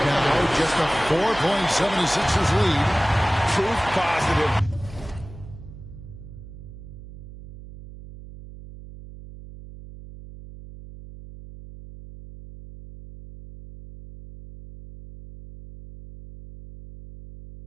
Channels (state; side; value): noise; right; hum, 15 dB below the sound